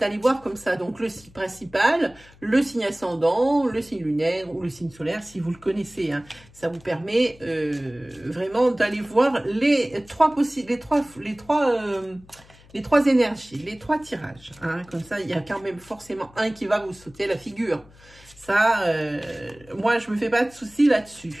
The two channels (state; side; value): noise; left; hum, 25 dB below the sound